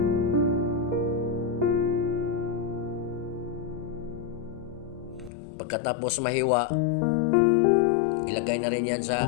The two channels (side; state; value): right; drops out; at 5.3 s